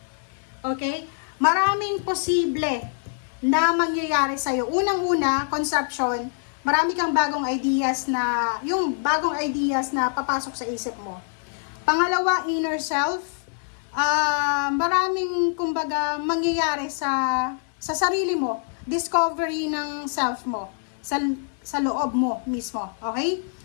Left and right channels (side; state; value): right; silent; digital silence